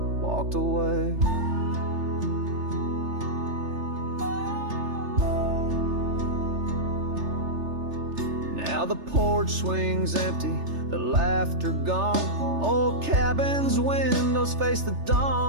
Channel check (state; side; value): late; left; 3.3 ms